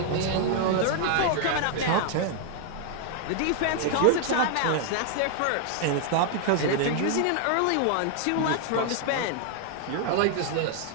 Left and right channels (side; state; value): both; different; correlation 0.00